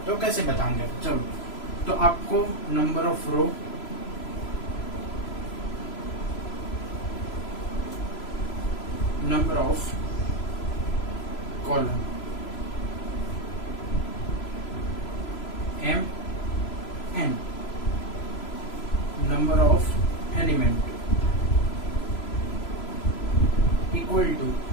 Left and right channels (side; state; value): right; late; 3.0 ms